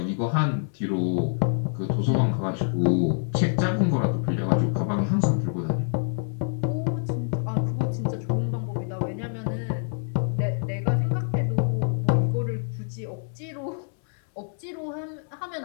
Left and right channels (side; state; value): right; silent; 61 dB below the other